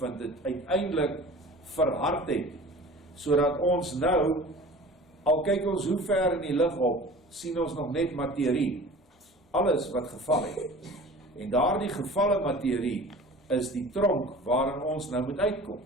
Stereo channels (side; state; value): both; normal; correlation 0.41